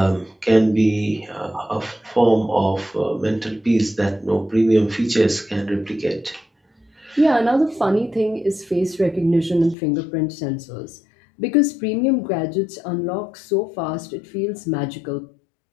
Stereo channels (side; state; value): right; drops out; at 9.8 s